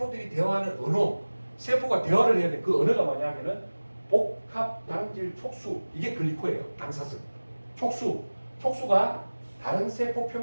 대화하는 언어, 세포가 대화를 해야 돼. 그 언어가 뭐냐면은 복합 당질 촉수, 이게 글리코예요. 당사슬. 촉수가 다른 세포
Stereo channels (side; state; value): both; inverted; correlation -1.00